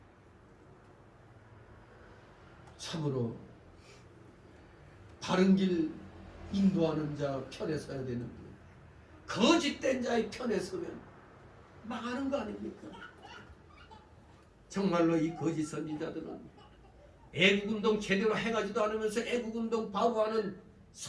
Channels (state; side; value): identical; both; correlation 1.00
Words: 참으로 바른 길 인도하는 자 편에 서야 되는데 거짓된 자의 편에 서면 망하는 거 아닙니까? 정말로 이 거짓 선지자들은 애국운동 제대로 행하지도 않으면서 애국운동 바로 하는